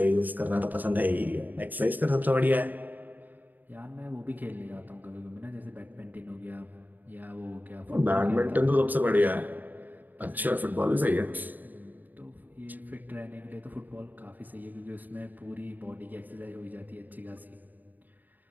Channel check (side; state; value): left; late; 0.086 ms